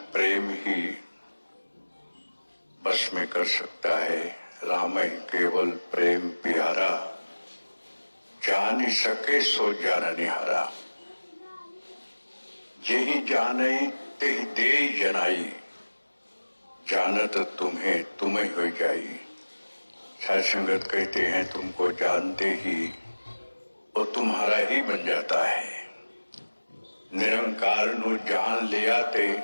प्रेम ही बस में कर सकता है। राम ही केवल प्रेम प्यारा, जान ही सके सो जान निहारा। जेहि जाने तेहि दे जनाई, जानत तुम्हें तुम्हें हो जाई। साध संगत कहते हैं तुमको जानते ही वो तुम्हारा ही बन जाता है। निरंकार नु जान लिया ते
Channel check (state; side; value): inverted; both; correlation -1.00